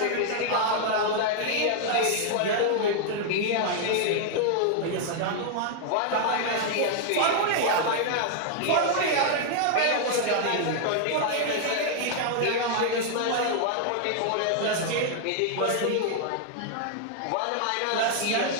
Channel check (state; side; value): different; both; correlation 0.00